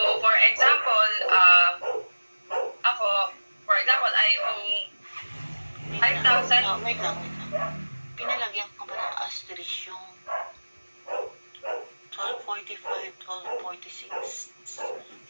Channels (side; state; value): both; inverted; correlation -1.00